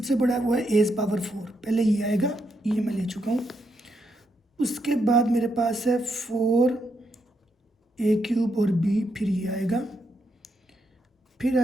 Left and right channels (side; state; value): both; normal; correlation 0.80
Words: बड़ा है वो है a पावर 4। पहले ये आएगा, ये मैं ले चुका हूँ। उसके बाद मेरे पास है 4a क्यूब और b, फिर ये आएगा, फिर